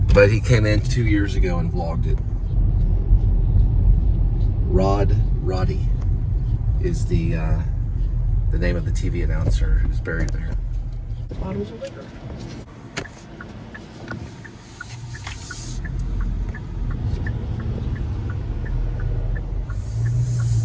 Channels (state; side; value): identical; both; correlation 1.00